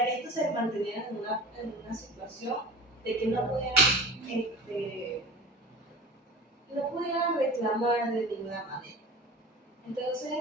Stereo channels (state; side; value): normal; both; correlation 0.37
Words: que estos se mantuvieran en una situación de que no pudieran reclamar de ninguna manera.